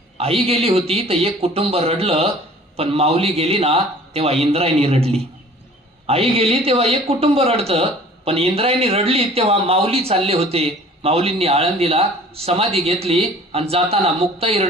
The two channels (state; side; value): normal; both; correlation 0.49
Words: आई गेली होती तर एक कुटुंब रडलं, पण माऊली गेली ना तेव्हा इंद्रायणी रडली. आई गेली तेव्हा एक कुटुंब रडतं, पण इंद्रायणी रडली तेव्हा माऊली चालले होते. माऊलींनी आळंदीला समाधी घेतली आणि जाताना मुक्ताई